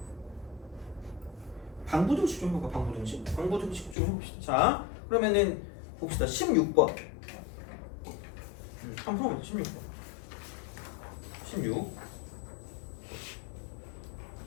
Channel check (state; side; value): drops out; right; at 4.0 s